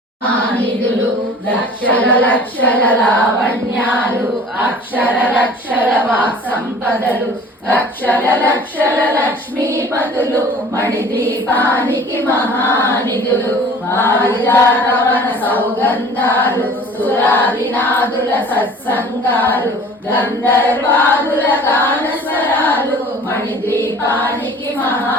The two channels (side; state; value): both; normal; correlation 0.47